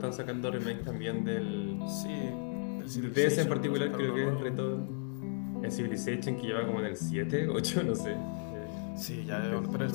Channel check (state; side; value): silent; right; 55 dB below the other